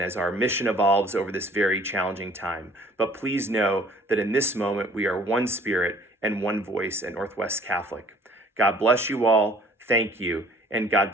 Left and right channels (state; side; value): normal; both; correlation 0.55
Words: as our mission evolves over this very challenging time. But please know that in this moment, we are one spirit and one voice at Northwest Catholic. God bless you all. Thank you. And God